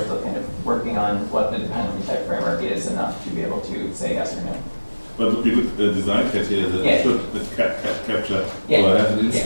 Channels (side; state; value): both; inverted; correlation -1.00